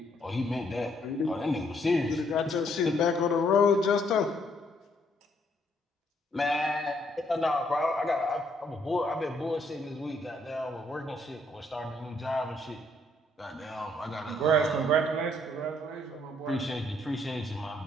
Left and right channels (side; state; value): both; normal; correlation 0.70